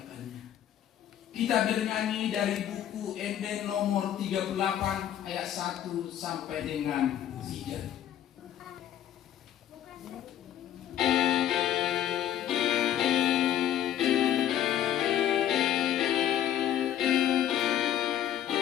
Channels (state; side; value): quieter; right; 11.0 dB